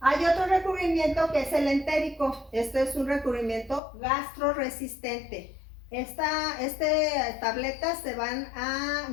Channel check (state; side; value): drops out; right; at 3.8 s